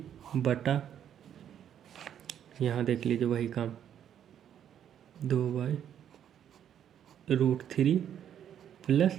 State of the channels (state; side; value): quieter; left; 9.6 dB